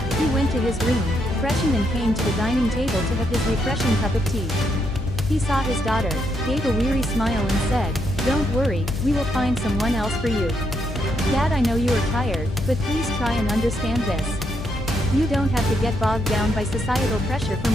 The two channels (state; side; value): noise; left; hum, 8 dB below the sound